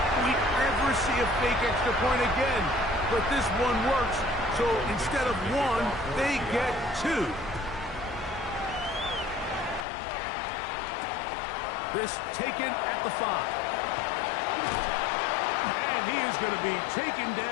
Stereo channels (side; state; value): right; drops out; at 9.9 s